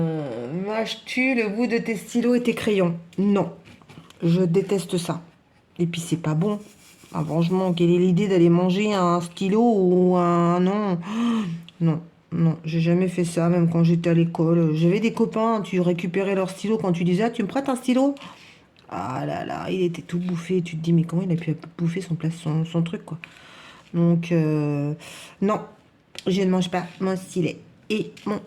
Mâches-tu le bout de tes stylos et tes crayons? Non, je déteste ça. Et puis c'est pas bon. Ah, franchement, quelle est l'idée d'aller manger un stylo ou un... Non, non, non, j'ai jamais fait ça, même quand j'étais à l'école. J'avais des copains, tu récupérais leur stylo quand tu disais, ah, tu me prêtes un stylo? Ah là là, il était tout bouffé. Tu te dis, mais comment il a pu bouffer son truc, quoi. Donc, non, je ne mange pas mon stylet et mon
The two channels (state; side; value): identical; both; correlation 1.00